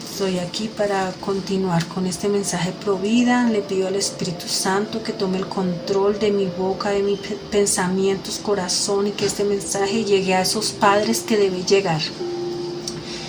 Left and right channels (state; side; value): identical; both; correlation 1.00